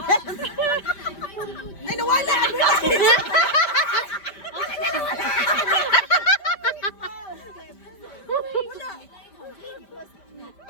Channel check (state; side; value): late; right; 5.0 ms